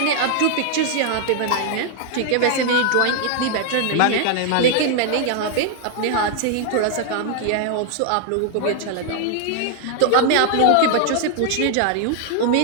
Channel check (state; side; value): different; both; correlation 0.00